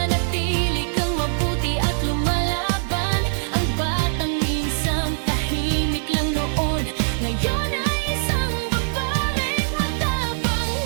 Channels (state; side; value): silent; left; digital silence